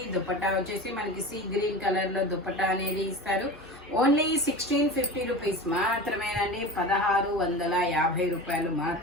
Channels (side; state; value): both; normal; correlation 0.31